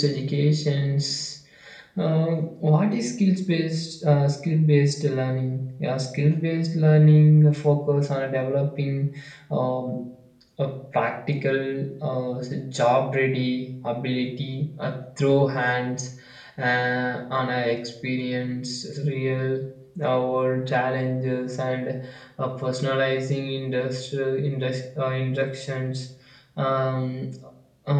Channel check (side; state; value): both; identical; correlation 1.00